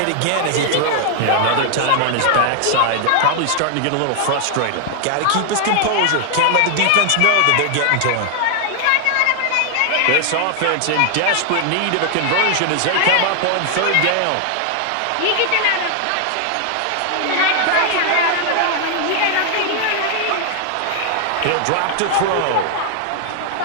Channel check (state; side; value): different; both; correlation 0.00